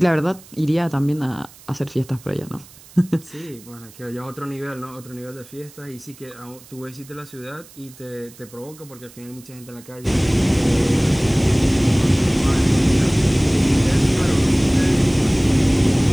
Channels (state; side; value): noise; right; hiss, 22 dB below the sound